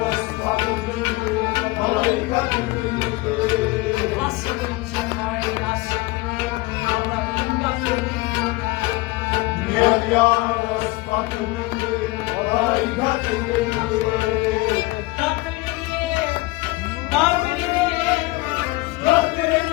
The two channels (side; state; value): right; quieter; 21.9 dB